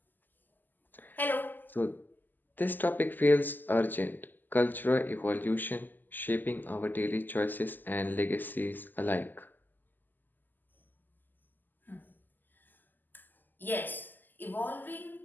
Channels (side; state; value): right; late; 0.088 ms